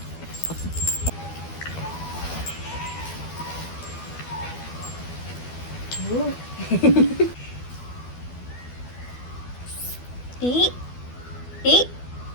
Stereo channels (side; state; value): right; late; 12 ms